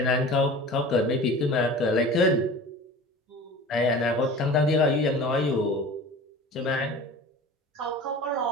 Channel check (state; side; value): normal; both; correlation 0.38